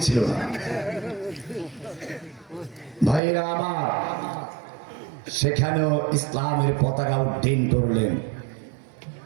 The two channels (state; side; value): drops out; left; at 3.2 s